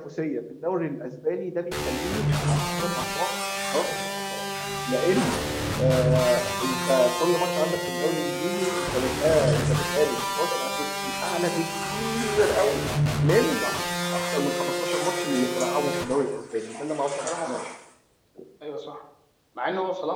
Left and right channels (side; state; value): both; identical; correlation 1.00